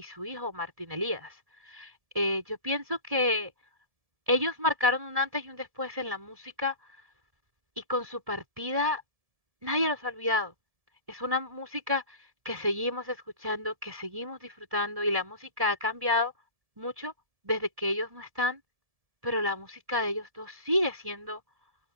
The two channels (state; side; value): late; left; 1.7 ms